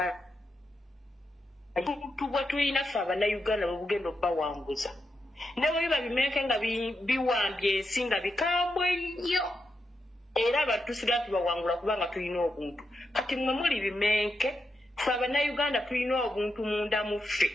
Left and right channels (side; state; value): both; normal; correlation 0.85